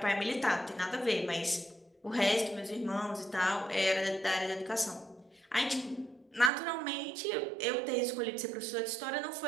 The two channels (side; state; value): left; drops out; at 6.5 s